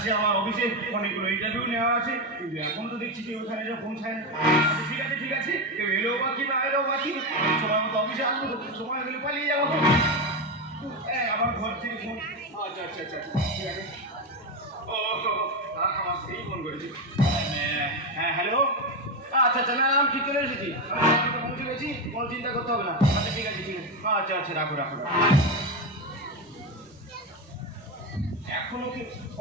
আমার অফিসে অনেকগুলো ইন্টারভিউ নেওয়া আছে, কিন্তু এখন তো দেখছি যে ওখানে যা পৌঁছায় না। ঠিক আছে ঠিক আছে, কেউ এলেও বাকি না এলেও বাকি, সময় মতো অফিসে আসবো, সময় হলে পালিয়ে যাবো। আমার ঘর থেকে ফোন। আচ্ছা আচ্ছা আচ্ছা ঠিক আছে। ও আমার সেই ফোন করেছি। হ্যাঁ হ্যালো, আচ্ছা আচ্ছা, না আমি ঠিক চলে এসেছি, পৌঁছে গেছি, কোনো চিন্তা করতে হবে না। আচ্ছা ঠিক আছে ঠিক আছে, আচ্ছা আচ্ছা রাখো রাখো। এখনো কি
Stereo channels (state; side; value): normal; both; correlation 0.13